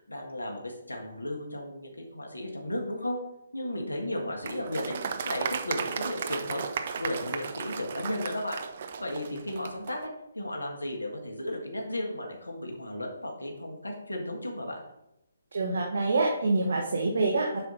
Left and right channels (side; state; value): both; inverted; correlation -0.80